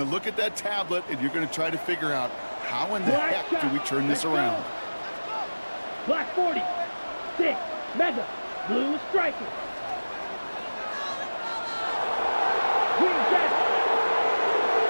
to look at that tablet, and you're going to try to figure out how in the heck do we turn this around? Black 40. 6, mega, blue striker. Green jet.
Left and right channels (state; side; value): inverted; both; correlation -1.00